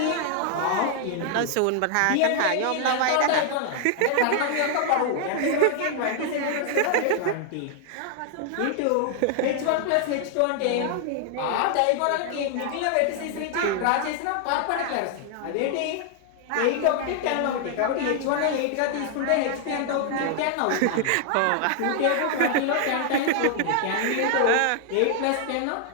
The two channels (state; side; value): different; both; correlation 0.00